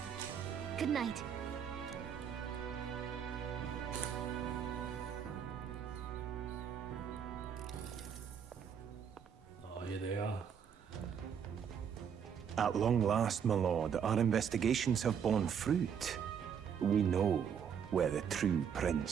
Good night. Oh, here they are. At long last, my lord, our investigations have borne fruit. We know where the true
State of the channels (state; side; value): quieter; left; 7.8 dB